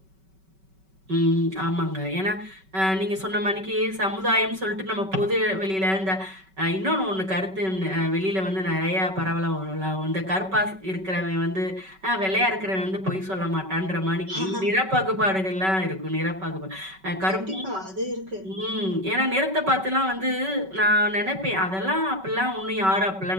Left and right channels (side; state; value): left; late; 5.3 ms